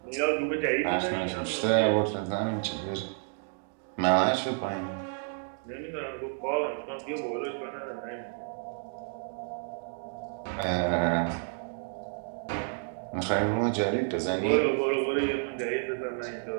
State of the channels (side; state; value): left; silent; 58 dB below the other